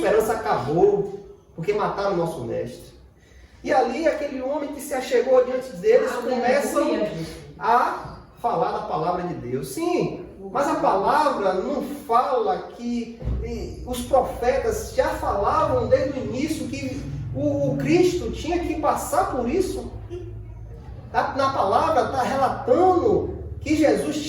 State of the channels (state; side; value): identical; both; correlation 1.00